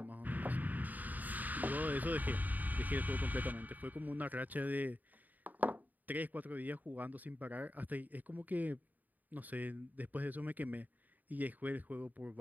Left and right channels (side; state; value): left; late; 0.083 ms